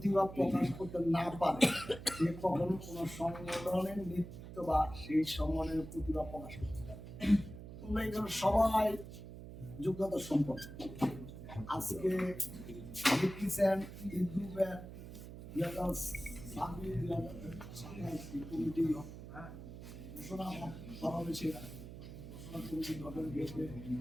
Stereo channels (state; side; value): noise; right; hum, 12 dB below the sound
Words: প্রকাশ করতে না পারে, সে কখনো কোনো সংগঠনের নেতৃত্ব বা সেই সংগঠনের প্রতিভা প্রকাশ করতে পারে। তোমরা এখানে সবাই যোগ্যতা সম্পন্ন। আজকে দেখতেছেন এই গ্রুপের কমিটি ঘোষণা করা হয়েছে। ঘোষণা কমিটি গঠন হয়েছে